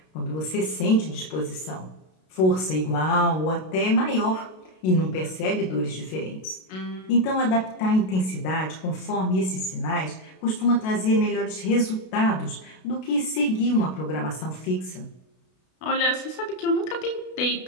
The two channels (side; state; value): right; late; 32 ms